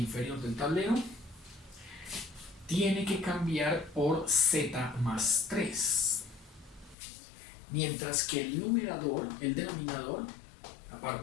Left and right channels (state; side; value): drops out; right; at 7.0 s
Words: del tablero, tiene que cambiar por z más 3. Mientras que el denominador,